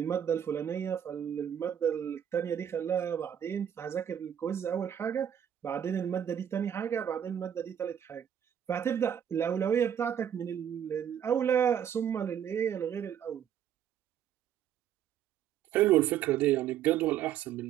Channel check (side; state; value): left; quieter; 9.4 dB